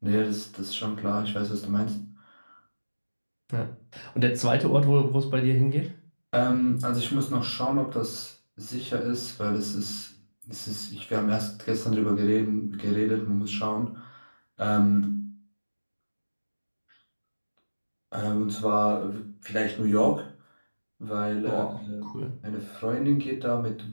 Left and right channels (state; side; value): inverted; both; correlation -1.00